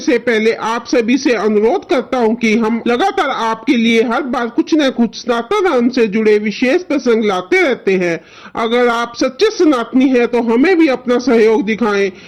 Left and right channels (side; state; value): both; identical; correlation 1.00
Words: पहले आप सभी से अनुरोध करता हूँ कि हम लगातार आपके लिए हर बार कुछ न कुछ सनातन धर्म से जुड़े विशेष प्रसंग लाते रहते हैं। अगर आप सच्चे सनातनी हैं तो हमें भी अपना सहयोग दिखाएं।